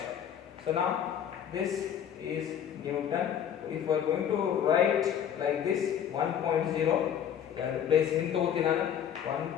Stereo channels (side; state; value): right; quieter; 9.1 dB